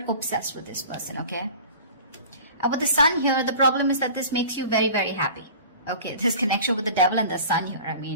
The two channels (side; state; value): both; inverted; correlation -0.42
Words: obsessed with this person, okay? With the sun here, the problem is that this makes you very, very happy. Okay, this connection with the devil and the sun here, I